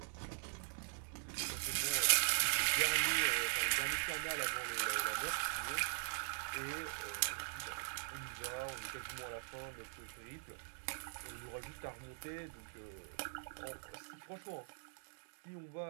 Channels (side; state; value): left; silent; digital silence